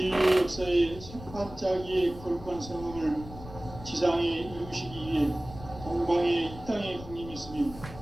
역사의 새반짝이의 거룩한 성음을 지상에 이루시기 위해 동방의 이 땅에 강림했으며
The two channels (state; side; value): noise; left; rumble, 14 dB below the sound